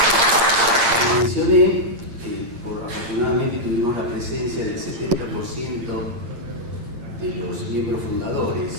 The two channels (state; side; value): late; left; 8.6 ms